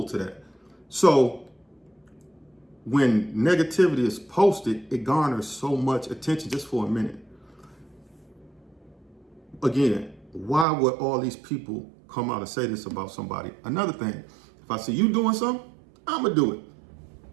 to that. So when negativity is posted, it garners so much attention just for a minute. Again, why would all these people come out and say this about somebody? Another thing, if I see you doing something, I'm gonna do it.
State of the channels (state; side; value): drops out; left; at 10.7 s